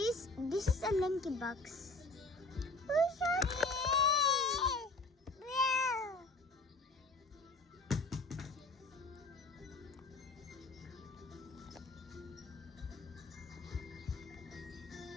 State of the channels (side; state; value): right; quieter; 3.1 dB